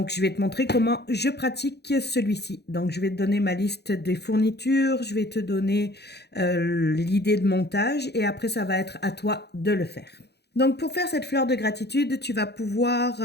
je vais te montrer comment je pratique celui-ci. Donc je vais te donner ma liste des fournitures, je vais te donner l'idée de montage et après ça va être à toi de le faire. Donc, pour faire cette fleur de gratitude, tu vas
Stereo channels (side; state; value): right; late; 0.48 ms